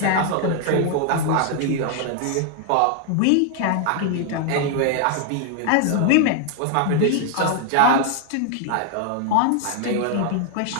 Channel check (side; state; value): both; different; correlation 0.00